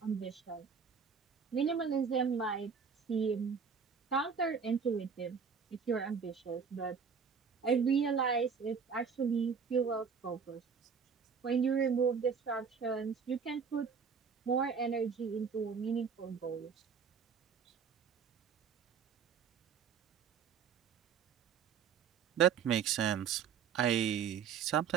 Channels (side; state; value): left; quieter; 6.4 dB